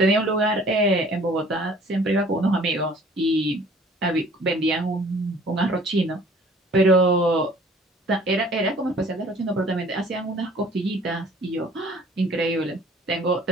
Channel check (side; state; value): both; normal; correlation 0.53